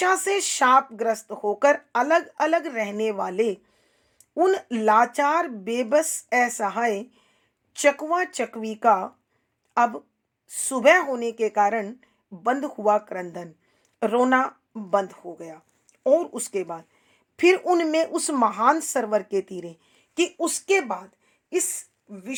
से शापग्रस्त होकर अलग अलग रहने वाले उन लाचार बेबस असहाय चकवा चकवी का अब सुबह होने के कारण बंद हुआ क्रंदन, रोना बंद हो गया। और उसके बाद फिर उनमें उस महान सरोवर के तीरे, कि उसके बाद इस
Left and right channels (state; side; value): identical; both; correlation 1.00